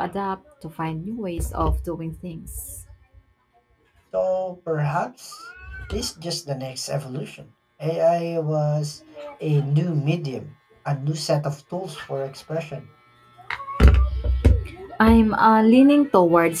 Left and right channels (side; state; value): both; identical; correlation 1.00